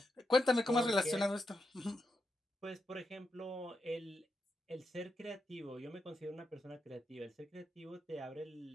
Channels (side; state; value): both; normal; correlation 0.85